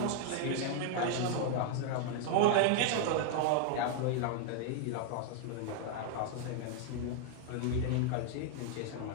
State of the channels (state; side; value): different; both; correlation 0.00